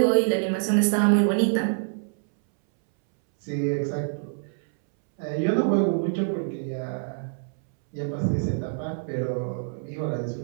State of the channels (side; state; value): left; silent; 61 dB below the other